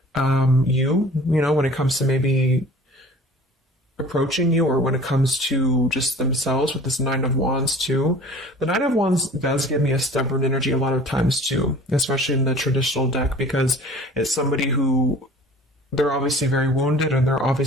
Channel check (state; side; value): normal; both; correlation 0.46